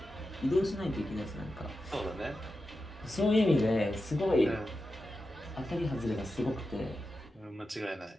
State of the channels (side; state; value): both; normal; correlation 0.90